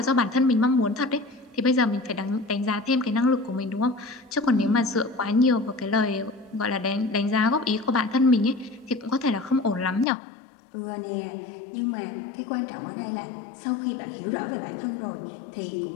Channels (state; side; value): drops out; right; at 10.1 s